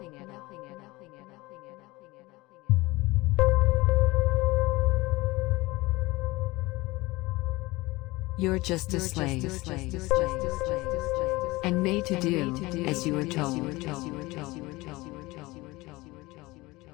You're just a slave, and made to do as you were told.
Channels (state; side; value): quieter; right; 21.3 dB